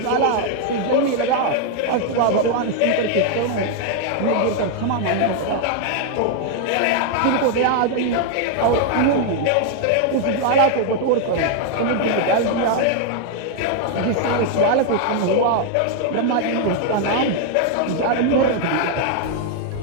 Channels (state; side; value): different; both; correlation 0.00